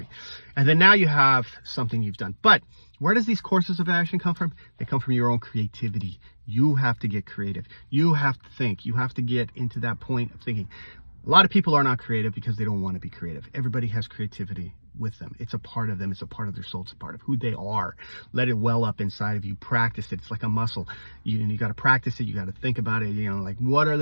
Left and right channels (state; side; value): inverted; both; correlation -1.00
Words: And then now you have something you've done. But where does these courses of action come from? They come from your own creativity. You have to get creative. You have to think. You have to get into that point of thinking. A lot of people are not creative because they don't want to be creative. Everybody has creativity with them. It's a part of them. It's a part of their soul. It's a part of who they are. Let it well up inside of you. Practice it. It's like a muscle. You got to practice it. You got to think about it. Like, what are